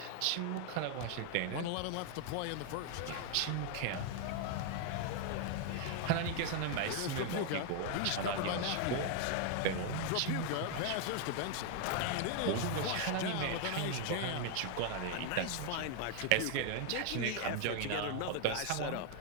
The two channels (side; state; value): both; different; correlation 0.00